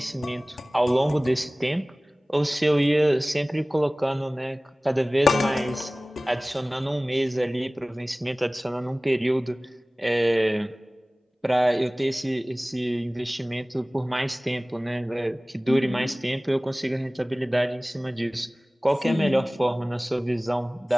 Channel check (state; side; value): normal; both; correlation 0.98